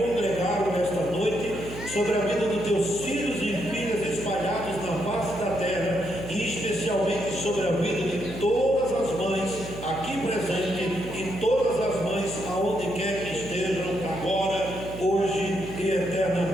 nesta noite, sobre a vida dos teus filhos e filhas espalhados na face da terra, e especialmente sobre a vida de todas as mães aqui presentes e todas as mães aonde quer que estejam, agora, hoje e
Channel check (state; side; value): noise; right; hum, 11 dB below the sound